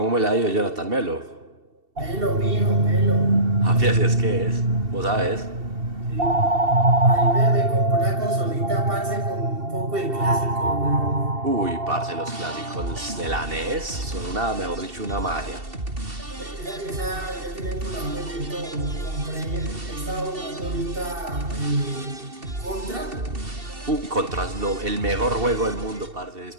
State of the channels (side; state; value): left; late; 2.7 ms